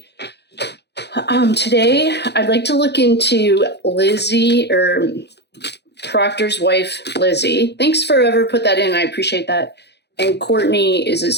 Today, I'd like to look into Lizzie, or Proctor's wife, Lizzie. Thanks for whoever put that in. I appreciate that. And Courtney is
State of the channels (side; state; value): right; late; 0.49 ms